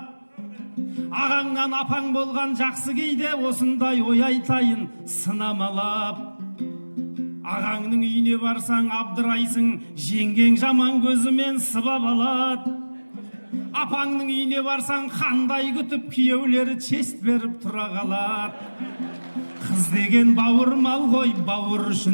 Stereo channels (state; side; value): inverted; both; correlation -1.00